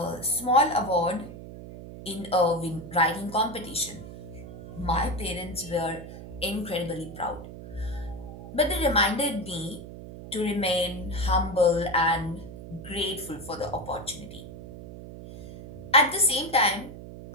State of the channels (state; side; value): noise; right; hum, 13 dB below the sound